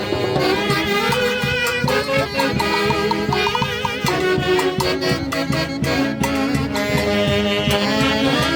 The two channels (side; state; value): both; identical; correlation 1.00